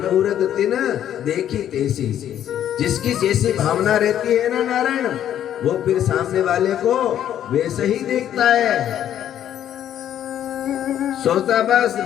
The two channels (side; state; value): right; quieter; 10.7 dB